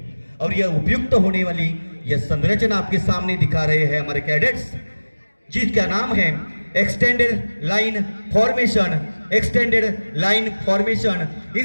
और यह उपयुक्त होने वाली यह संरचना आपके सामने दिखा रहे हैं हमारे कैडेट्स, जिसका नाम है extended line formation. Extended line formation.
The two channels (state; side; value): inverted; both; correlation -1.00